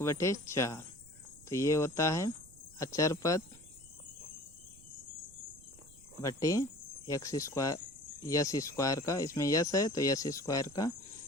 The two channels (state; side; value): noise; right; rumble, 23 dB below the sound